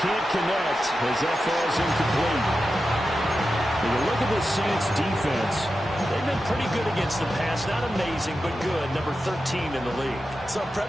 can't connect as that falls incomplete. When you look at the Saints defense, they've been pretty good against the pass. Not amazing, but good. Number 13 in the league. So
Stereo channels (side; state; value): both; normal; correlation 0.91